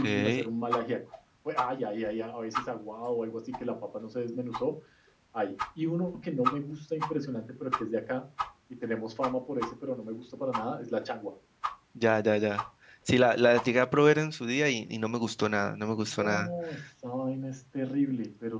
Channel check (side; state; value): both; identical; correlation 1.00